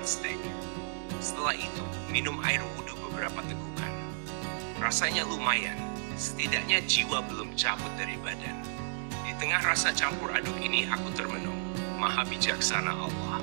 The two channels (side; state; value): left; silent; digital silence